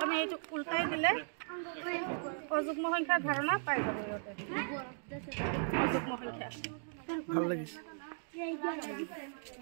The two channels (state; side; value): silent; left; digital silence